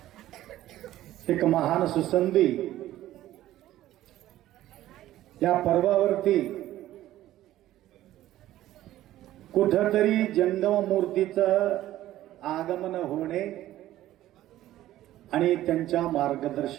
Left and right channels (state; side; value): quieter; left; 14.2 dB